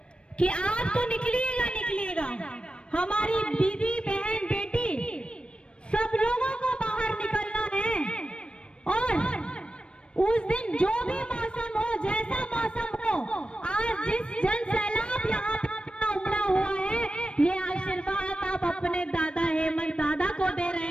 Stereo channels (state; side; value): late; right; 0.057 ms